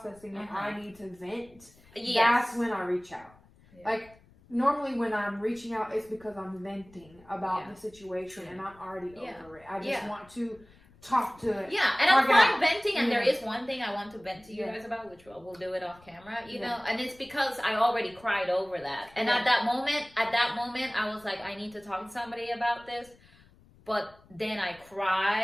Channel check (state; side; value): noise; left; rumble, 27 dB below the sound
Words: and Uh-huh. I need to vent, Yes. that's when I reach out. Yeah. Like normally when I'm reaching out, it's because I'm venting about Yeah. the situation and I'm already Yeah. over it. I just Yeah. want to talk to it. Yeah, and I'm Talk it fine out. venting, and there Yeah. is one thing I want to vent to you Yeah. guys about, which we'll do it off camera, you Yeah. know, and it's because I already cried over that. And Yeah. at that moment, I was like, I need to talk to somebody about this. But then I